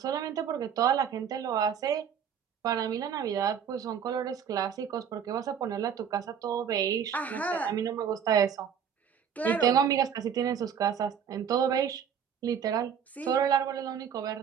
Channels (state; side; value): quieter; left; 8.0 dB